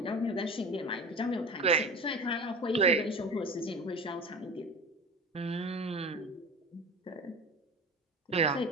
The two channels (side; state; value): both; normal; correlation 0.33